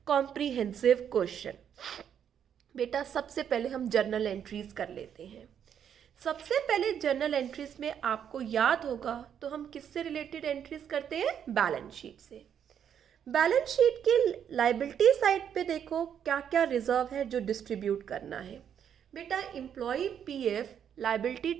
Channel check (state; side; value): quieter; left; 8.7 dB